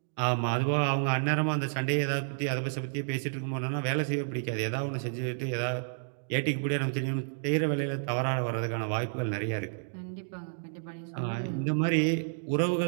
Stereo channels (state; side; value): silent; left; digital silence